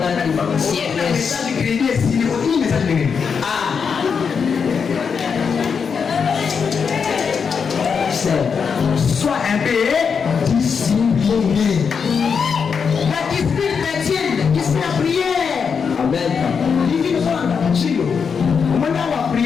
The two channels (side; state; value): right; quieter; 6.2 dB